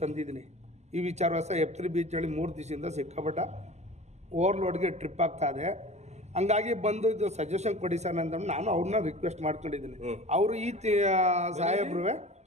ತಂದಿದ್ದೀನಿ ಈ ವಿಚಾರವಾಸ. F3 ಬೀಚ್ನಲ್ಲಿ 3 ದಿವಸದಿಂದ ಸಿಕ್ಕಾಪಟ್ಟ ಓವರ್ಲೋಡ್ಗೆ ಟ್ರಿಪ್ ಆಗ್ತಾ ಇದೆ. ಹಂಗಾಗಿ ಬಂದು ಇದು ಸಜೆಷನ್ ಕೊಡಿ ಸರ್ ಅಂತ ನಾನು ಅವ್ರನ್ನ ರಿಕ್ವೆಸ್ಟ್ ಮಾಡ್ಕೊಂಡಿದ್ದೀನಿ. ಅವರು ಈ ಸಾಹೇಬ್ರು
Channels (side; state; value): left; late; 0.33 ms